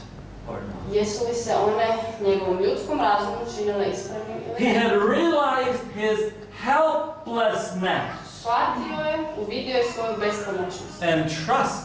or not. jesu li se one njegovom ljudskom razumu činile ispravnim ili He ne. had realized his helplessness Shvatio je, uvidio je svoju bespomoćnost and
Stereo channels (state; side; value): identical; both; correlation 1.00